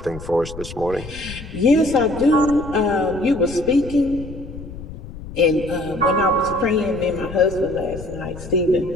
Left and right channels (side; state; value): left; noise; rumble, 13 dB below the sound